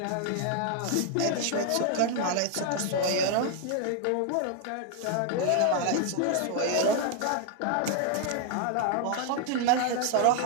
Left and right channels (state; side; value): different; both; correlation 0.00